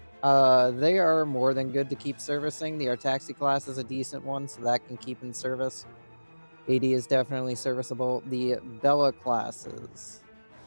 They are more than good to keep servicing. The Artaxi class is a decent one, so that can keep in service. AD is definitely serviceable. The Bella classes.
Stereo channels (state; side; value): inverted; both; correlation -1.00